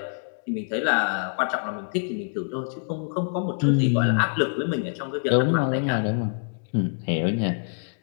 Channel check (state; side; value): silent; right; digital silence